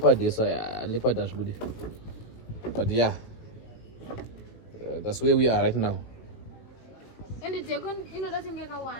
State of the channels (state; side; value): late; right; 18 ms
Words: esa leopard ashbude. But yeah. That's where we are right now. And it's going to get a